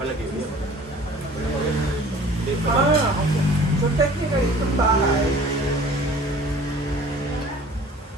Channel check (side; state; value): both; normal; correlation 0.48